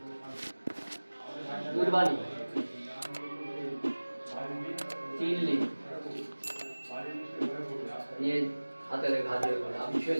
दूरवाणी चिल्ली ये हाथे घाटे आप छुए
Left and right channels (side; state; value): both; inverted; correlation -1.00